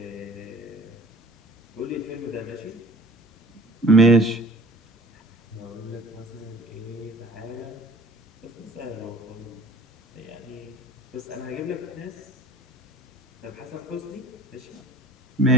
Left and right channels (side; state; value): both; normal; correlation 0.47